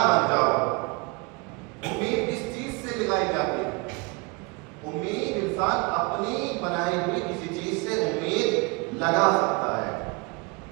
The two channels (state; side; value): quieter; left; 28.9 dB